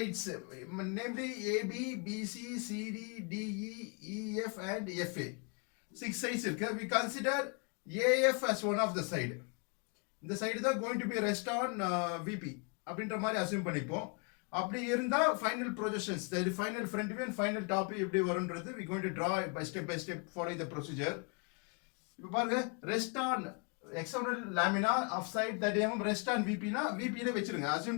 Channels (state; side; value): quieter; right; 34.4 dB